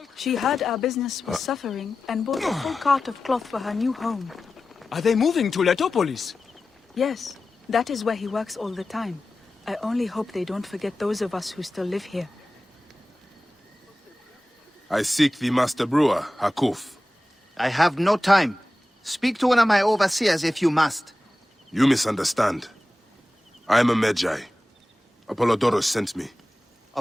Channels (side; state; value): both; normal; correlation 0.95